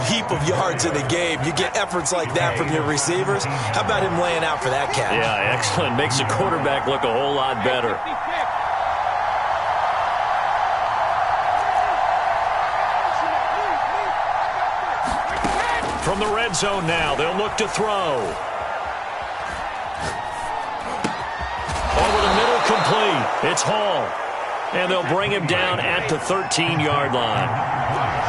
heap of yards in a game. You get efforts like that from your receivers. How about him laying out for that catch? Yeah, excellent. Makes the quarterback look a whole lot better. From the red zone now, they'll look to throw. Over the middle, complete. It's Hall. And they'll bring him down at the 13-yard line.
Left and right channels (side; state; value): both; identical; correlation 1.00